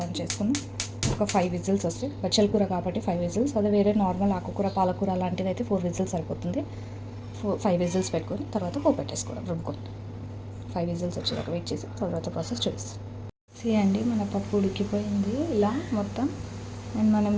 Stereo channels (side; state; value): both; identical; correlation 1.00